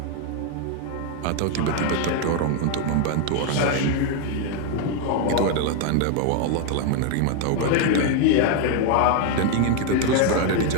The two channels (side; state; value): both; different; correlation 0.01